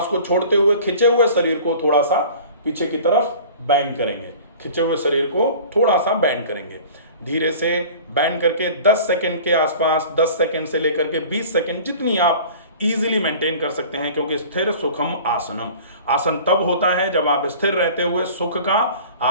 को छोड़ते हुए खिंचे हुए शरीर को थोड़ा सा पीछे की तरफ बेंड करेंगे। खिंचे हुए शरीर को थोड़ा सा बेंड करेंगे। धीरे से बेंड करके 10 सेकंड के आसपास, 10 सेकंड से लेकर के 20 सेकंड, जितनी आप इजीली मेंटेन कर सकते हैं। क्योंकि स्थिर सुखम आसनम, आसन तब होता है जब आप स्थिर रहते हुए सुख का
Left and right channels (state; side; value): inverted; both; correlation -0.43